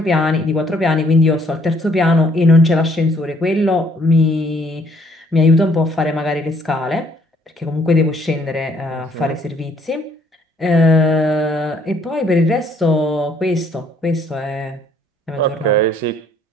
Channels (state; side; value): normal; both; correlation 0.64